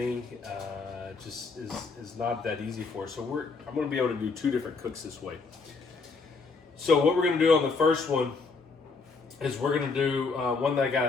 just is not that easy for us. So I'm going to be able to do two different cooks this way. So what we're going to do on the first one is we're going to do one that I got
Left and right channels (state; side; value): quieter; right; 4.4 dB